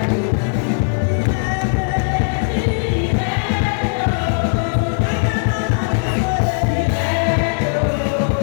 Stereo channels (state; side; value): silent; right; 64 dB below the other